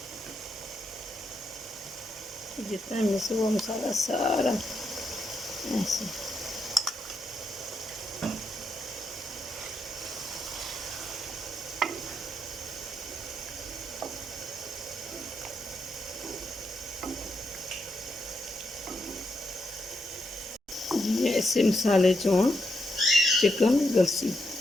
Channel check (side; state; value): both; normal; correlation 0.81